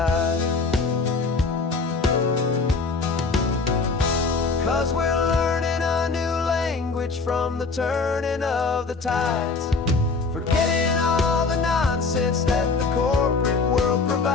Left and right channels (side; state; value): right; quieter; 4.2 dB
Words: 'Cause we're learning a new language from the turning of the tides, forgetting all the nonsense that the corporate world